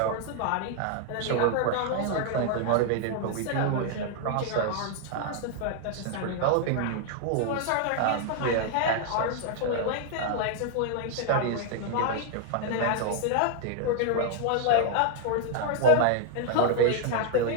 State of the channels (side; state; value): both; different; correlation 0.00